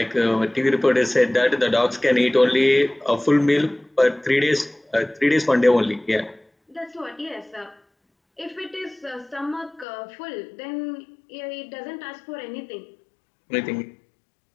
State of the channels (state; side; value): drops out; right; at 9.9 s